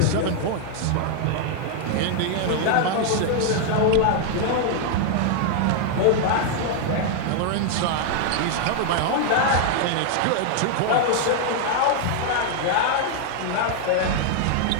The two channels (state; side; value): different; both; correlation 0.00